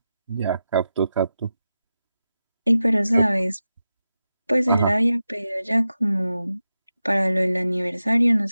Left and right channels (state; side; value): inverted; both; correlation -0.91